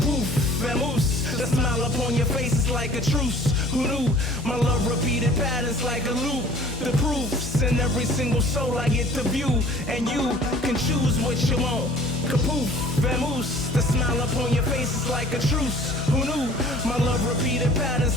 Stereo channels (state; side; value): normal; both; correlation 0.49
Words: vamoose, the smile upon your face is like a truce. Who knew? My love repeated patterns like a loop. The proofs in every single soul I get to view, and you can choose what you want. Kapoof, vamoose, the smile upon your face is like a truce. Who knew? My love repeated